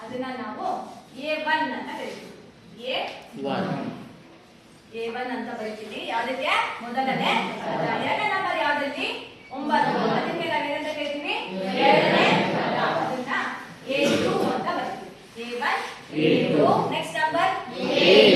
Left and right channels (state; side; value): identical; both; correlation 1.00